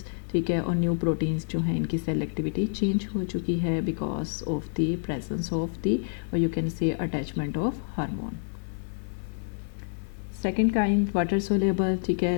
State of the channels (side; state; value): right; silent; digital silence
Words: ठीक है। और न्यू प्रोटीन्स जो हैं इनकी सेल एक्टिविटी चेंज हो चुकी है because of the presence of the, और you can say attachment of hormone. Second kind water soluble, ठीक